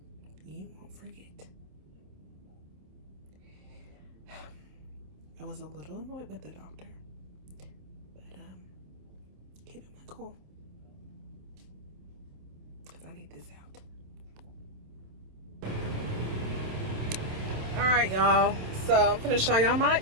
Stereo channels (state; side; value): late; left; 27 ms